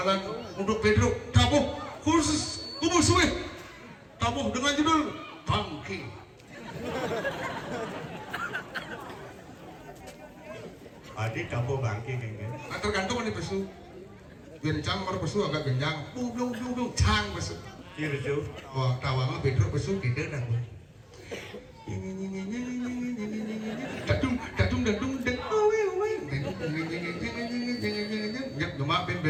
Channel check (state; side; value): identical; both; correlation 1.00